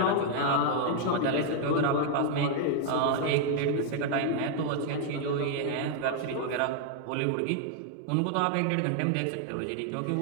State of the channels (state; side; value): different; both; correlation 0.00